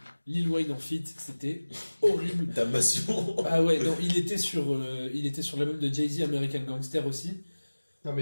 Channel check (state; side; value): inverted; both; correlation -1.00